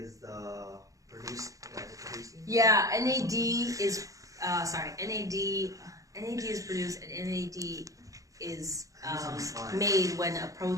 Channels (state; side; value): late; left; 0.16 ms